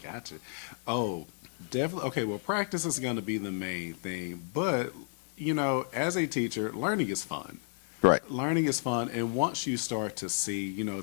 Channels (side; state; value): right; silent; 56 dB below the other